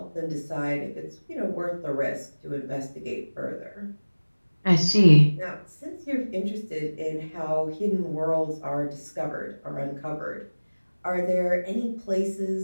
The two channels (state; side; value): inverted; both; correlation -1.00